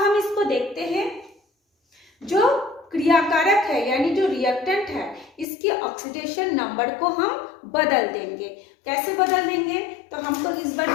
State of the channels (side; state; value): right; drops out; at 5.5 s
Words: इसको देखते हैं, जो क्रियाकारक है यानी जो रिएक्टेंट है, इसकी ऑक्सीडेशन नंबर को हम बदल देंगे। कैसे बदल देंगे, तो हमको इस बार